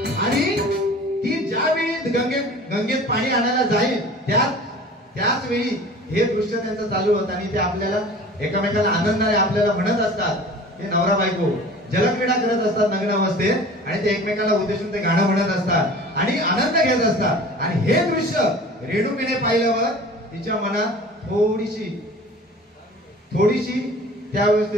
आणि ती ज्यावेळी गंगेत पाणी आणायला जाईल त्याच वेळी हे दृश्य त्यांचं चालू होतं. आणि ते आपल्याला एकमेकांना आनंदाने आपल्याला म्हणत असतात, ते नवरा बायको जलक्रीडा करत असतात नग्न अवस्थेत आणि ते एकमेकांना उद्देशून ते गाणं म्हणत असतात आणि आनंद घेत असतात. आणि हे दृश्य रेणुकीने पाहिल्यावर तिच्या मनात थोडीशी त्या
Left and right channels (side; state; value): both; normal; correlation 0.42